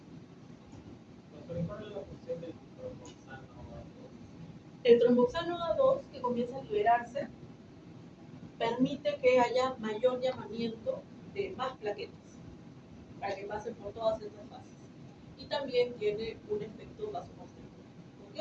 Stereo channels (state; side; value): identical; both; correlation 1.00